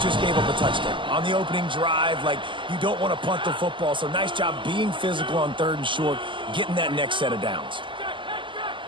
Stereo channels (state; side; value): late; left; 0.24 ms